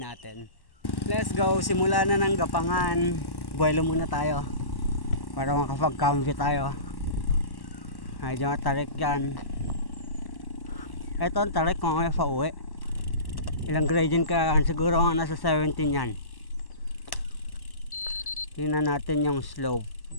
Let's go, simula na ng Gapangan. Buwelo muna tayo para makapag-cambio tayo. Medyo matarik yan. Ito ang tarik kung may pauwi. Ilang gradient ka yan? Siguro nga nasa 17 yan. Tingnan natin yung slope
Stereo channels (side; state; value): right; late; 1.1 ms